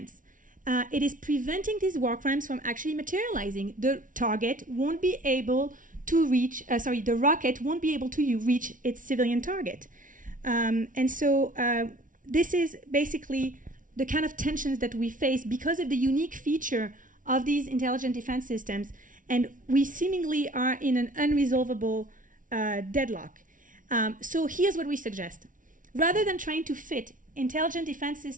It is preventing these war crimes from actually materializing. The target won't be able to reach, the rocket won't be able to reach its civilian target. And so this is basically the kind of tensions that we face because of the unique feature of these intelligent defense systems. And we seemingly are in an unresolvable deadlock. So here's what we suggest. Rather than trying to fit intelligent defense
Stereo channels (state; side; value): late; left; 0.38 ms